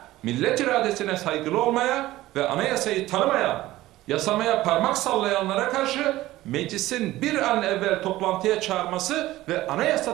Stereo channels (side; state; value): left; quieter; 16.5 dB